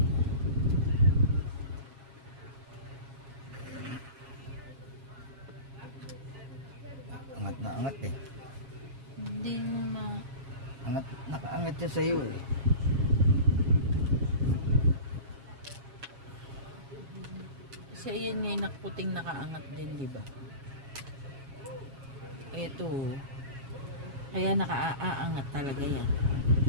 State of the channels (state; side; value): late; left; 7.3 ms